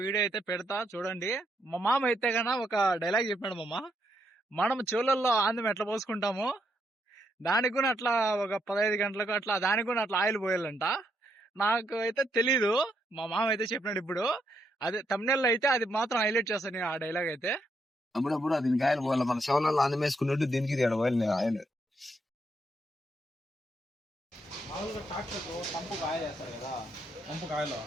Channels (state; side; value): normal; both; correlation 0.77